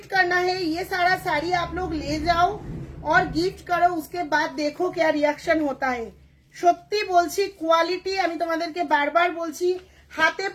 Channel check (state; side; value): identical; both; correlation 1.00